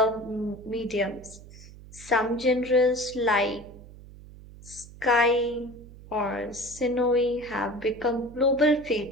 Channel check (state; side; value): noise; right; hum, 18 dB below the sound